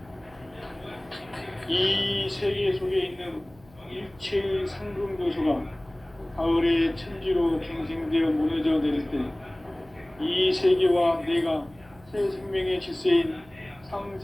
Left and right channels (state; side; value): noise; right; hum, 26 dB below the sound